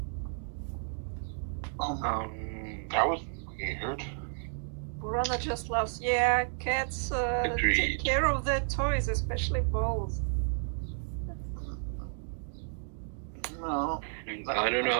That was weird. Burana just laughs. Yeah, cats take Agreed. care of their toys, especially balls. No. I don't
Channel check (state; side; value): silent; left; digital silence